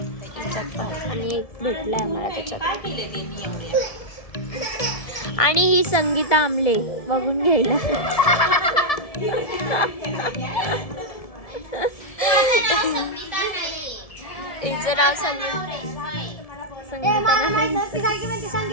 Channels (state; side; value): late; right; 1.7 ms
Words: त्याच्यात पण आणि एक भेटलाय मला त्याच्यात. आणि ही संगीता आमले बघून घ्यायला हिचं नाव संगीता